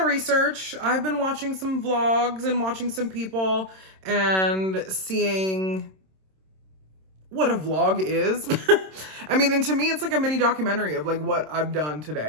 I've been watching some vlogs and watching some people and seeing what a vlog is. I mean, and to me, it's like a mini documentary of like what I've done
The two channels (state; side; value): late; left; 26 ms